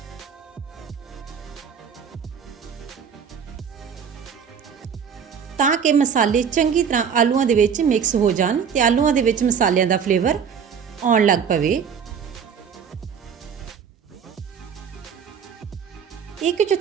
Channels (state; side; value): quieter; left; 7.1 dB